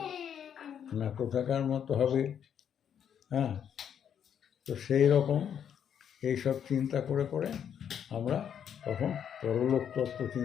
না কোথাকার মতো হবে? হ্যাঁ, তো সেই রকম এইসব চিন্তা করে করে আমরা তখন পরলোক তত্ত্ব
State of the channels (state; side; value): quieter; right; 8.6 dB